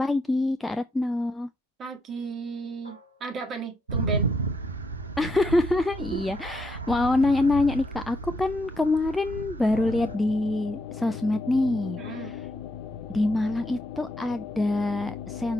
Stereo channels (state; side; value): normal; both; correlation 0.78